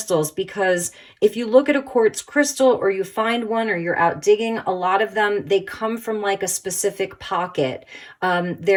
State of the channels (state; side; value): identical; both; correlation 1.00